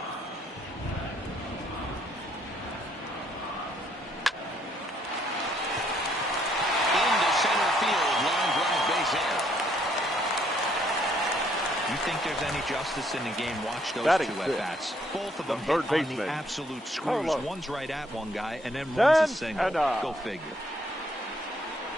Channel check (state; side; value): normal; both; correlation 0.68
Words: Think there's any justice in the game? Watch those two at-bats. Both of them hit on the absolute screws. One's right at one guy, and then runs a single. Go figure.